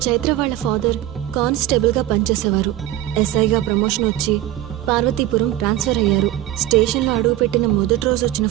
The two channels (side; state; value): left; quieter; 14.1 dB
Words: చైత్ర వాళ్ళ ఫాదర్ కానిస్టేబుల్గా పనిచేసేవారు. ఎస్ఐగా ప్రమోషన్ వచ్చి పార్వతీపురం ట్రాన్స్ఫర్ అయ్యారు. స్టేషన్లో అడుగుపెట్టిన మొదటి రోజు వచ్చిన